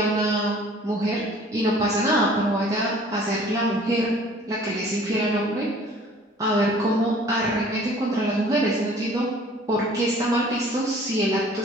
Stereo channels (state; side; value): normal; both; correlation 0.51